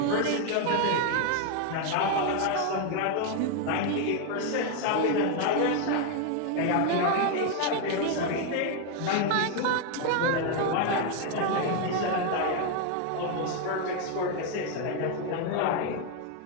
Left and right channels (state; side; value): different; both; correlation 0.01